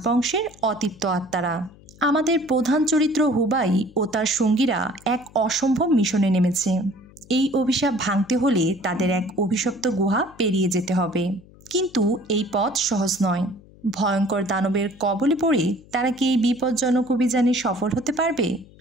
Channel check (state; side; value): noise; left; hum, 24 dB below the sound